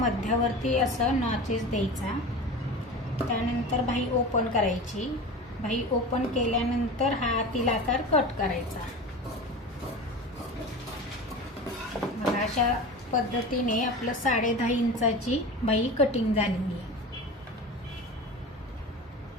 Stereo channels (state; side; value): normal; both; correlation 0.31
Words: असं नॉचेस द्यायचा. त्यानंतर बाही ओपन करायची. बाही ओपन केल्यानंतर हा आतील आकार कट करायचा. बघा, अशा पद्धतीने आपलं 10.5 इंचाची बाही कटिंग झालेली आहे.